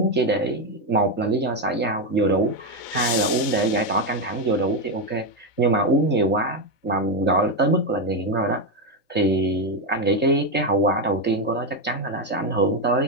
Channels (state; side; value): late; right; 4.0 ms